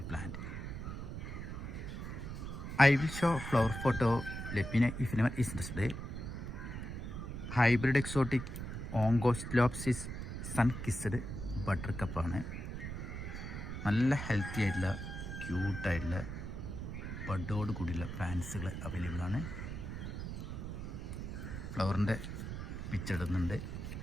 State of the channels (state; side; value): noise; right; rumble, 6 dB below the sound